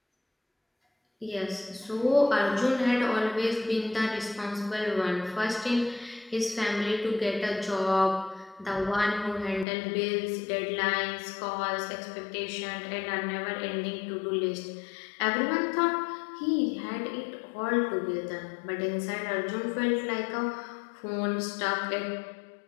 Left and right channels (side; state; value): right; drops out; at 9.7 s